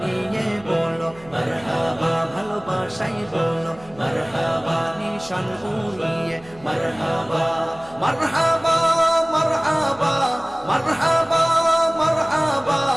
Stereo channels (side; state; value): right; noise; hum, 23 dB below the sound